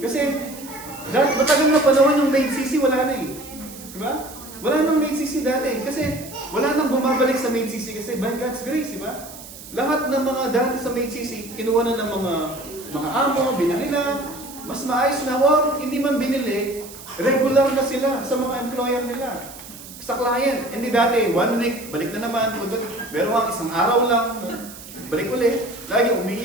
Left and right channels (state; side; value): noise; right; hiss, 16 dB below the sound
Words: Kasi, matagal na panahon yung main CC, wala na eh. Di ba? Wala nang main CC dati. Kasi, wala nang bumabalik sa main CC kasi by God's grace, di ba? Lahat ng mga dati sa main CC, kinuha na ng mga amo, binili na, mas maayos na, or hindi man binili, regular na sila sa mga employer nila. Sa client, hindi dati, 1 week, balik na naman, pero ang isang araw lang, balik ulit, lagi